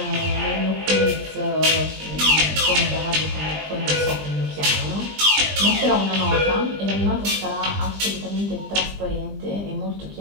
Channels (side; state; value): left; late; 20 ms